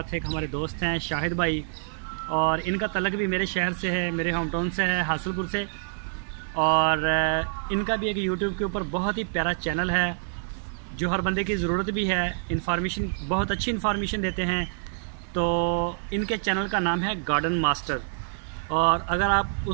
एक हमारे दोस्त हैं शाहिद भाई, और इनका तलक भी मेरे शहर से है, मेरे होम टाउन से है, हासिलपुर से। और इनका भी एक यूट्यूब के ऊपर बहुत ही प्यारा चैनल है जो हर बंदे की ज़रूरत भी है। इन्फॉर्मेशन, बहुत अच्छी इन्फॉर्मेशन देते हैं। तो इनके चैनल का नाम है गार्डन मास्टर, और अगर आप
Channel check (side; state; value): left; silent; digital silence